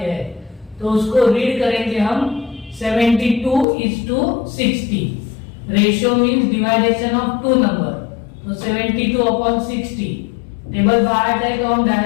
हैं, तो उसको रीड करेंगे हम 72:60। Ratio means division of 2 number, तो 72/60। टेबल बाय हार्ट है तो हम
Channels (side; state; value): right; drops out; at 3.7 s